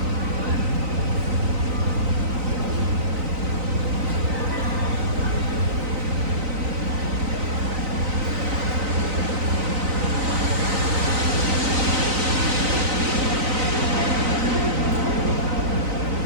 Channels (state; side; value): late; left; 3.9 ms